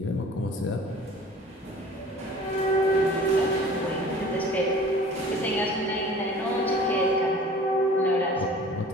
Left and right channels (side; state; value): both; normal; correlation 0.46